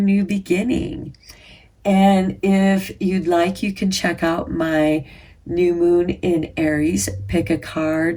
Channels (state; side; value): identical; both; correlation 1.00